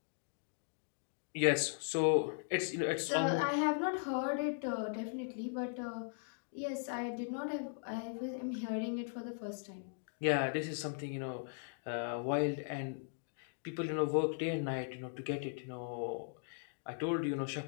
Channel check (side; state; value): right; silent; digital silence